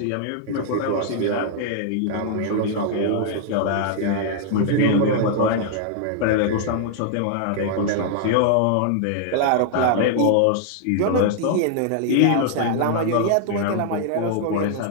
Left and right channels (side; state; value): both; different; correlation -0.01